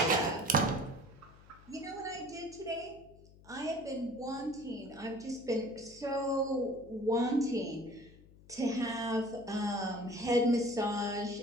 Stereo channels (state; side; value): noise; left; hum, 23 dB below the sound